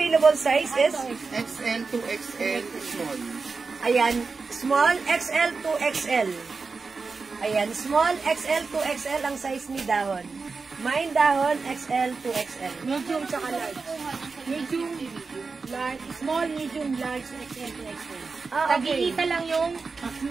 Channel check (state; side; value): quieter; left; 4.5 dB